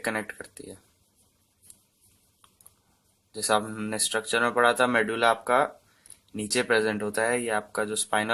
करती है। जैसा हमने स्ट्रक्चर में पढ़ा था, मेडुला आपका नीचे प्रेजेंट होता है, ये आपका जो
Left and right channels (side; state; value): both; identical; correlation 1.00